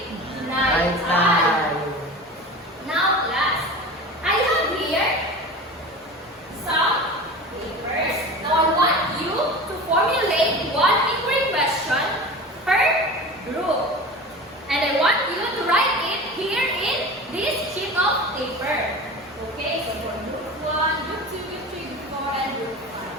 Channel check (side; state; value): both; normal; correlation 0.33